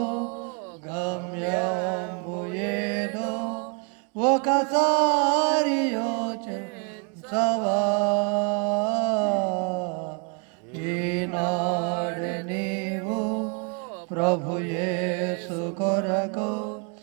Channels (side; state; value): left; quieter; 35.3 dB